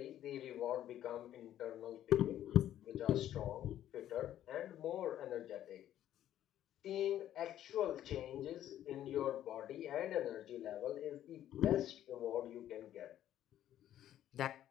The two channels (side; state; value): right; quieter; 11.8 dB